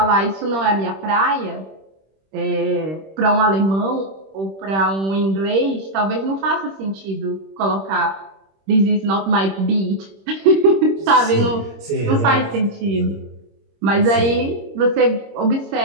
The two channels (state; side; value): late; left; 26 ms